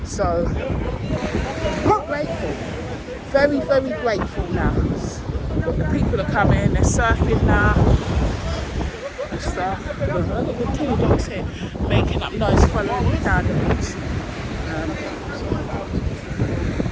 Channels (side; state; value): both; identical; correlation 1.00